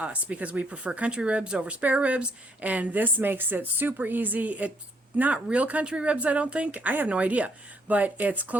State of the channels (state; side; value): normal; both; correlation 0.69